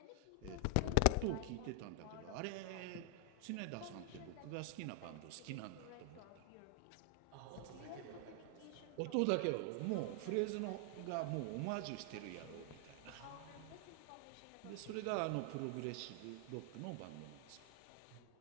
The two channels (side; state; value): both; different; correlation 0.00